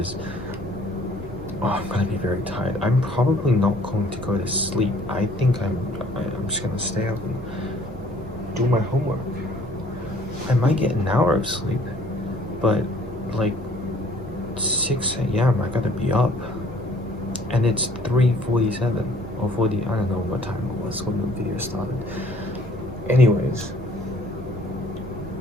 I'm gonna be very tired. I'm probably not going to go to sleep. I think I'm just gonna stay up and do my homework. I might get an hour of sleep, but like 6 a.m. I gotta be up. And it's 3:47 or 40, I don't know what time it was when the video started. Anyways.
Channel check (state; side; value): normal; both; correlation 0.57